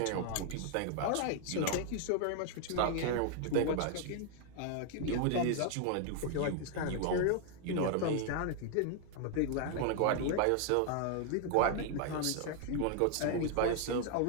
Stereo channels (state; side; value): different; both; correlation 0.00